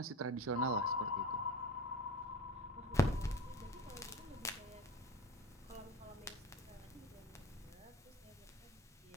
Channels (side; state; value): both; normal; correlation 0.34